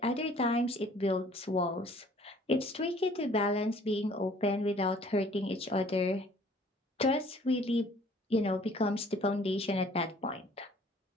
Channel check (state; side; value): normal; both; correlation 0.56